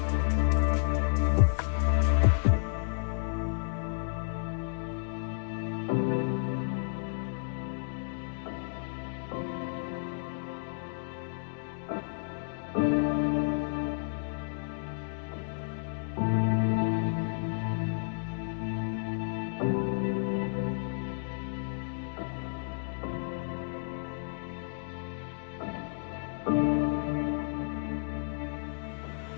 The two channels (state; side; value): silent; right; digital silence